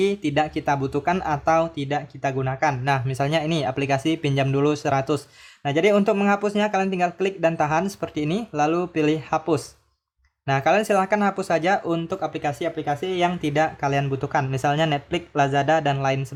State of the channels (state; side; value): identical; both; correlation 1.00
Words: tidak kita butuhkan atau tidak kita gunakan. Nah, misalnya ini aplikasi pinjam dulu 100. Nah, jadi untuk menghapusnya kalian tinggal klik dan tahan seperti ini, lalu pilih hapus. Nah, kalian silahkan hapus saja untuk aplikasi-aplikasi yang tidak kalian butuhkan. Misalnya Netflix, Lazada, dan lain